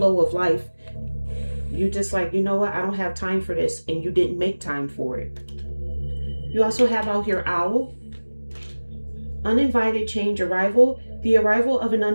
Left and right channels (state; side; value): inverted; both; correlation -1.00